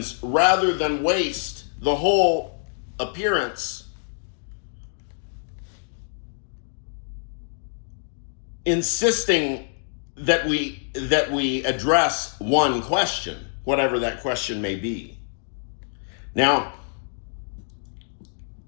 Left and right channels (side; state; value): right; silent; digital silence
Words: rather than waste the whole appearance insisting that we address one question, whatever that question may be. Now,